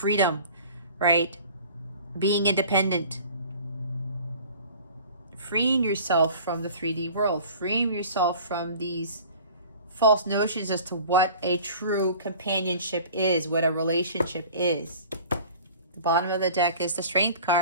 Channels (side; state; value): both; inverted; correlation -0.45